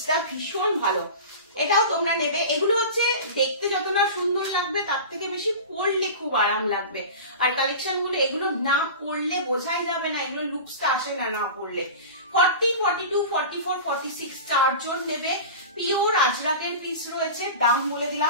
ভীষণ ভালো, এটাও তোমরা নেবে। এগুলো হচ্ছে দেখতে যত না সুন্দর লাগবে তার থেকে বেশি পরলে খুব আরাম লাগবে। আর কালেকশন গুলো এগুলো না পরলে বোঝাই যাবে না, এগুলো লুকসটা আসে না না পরলে। 40-42-44-46 চারজন নেবে, পিওর আজরাকের পিস রয়েছে। দাম বলে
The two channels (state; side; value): inverted; both; correlation -0.32